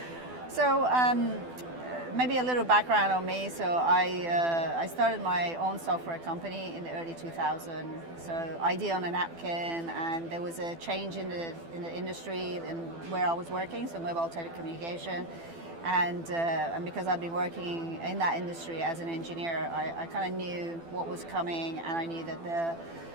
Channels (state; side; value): late; left; 12 ms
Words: So maybe a little background on me. So I started my own software company in the early 2000s. So ID on a napkin, and there was a change in the industry and where I was working, so mobile telecommunication. And because I'd been working in that industry as an engineer, I kind of knew what was coming, and I knew that the